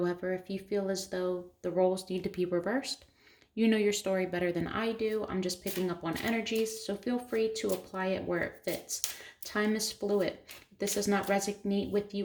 if you feel as though the roles need to be reversed, you know your story better than I do. I'm just picking up on energies, so feel free to apply it where it fits. Time is fluid. If this does not resonate with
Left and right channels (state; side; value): identical; both; correlation 1.00